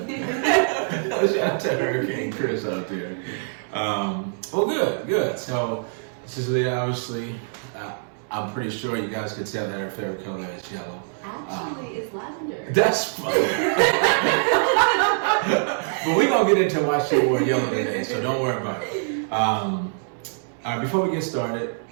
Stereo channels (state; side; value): silent; left; 62 dB below the other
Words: to Hurricane Chris out there. Well, good. So this is Liyah, obviously. I'm pretty sure you guys could tell that her favorite color is yellow. Actually, it's lavender. That's funny. But we're going to get into why she wore yellow today, so don't worry about it. All right, before we get started,